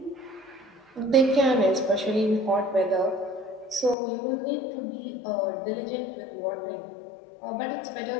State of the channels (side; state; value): right; drops out; at 4.0 s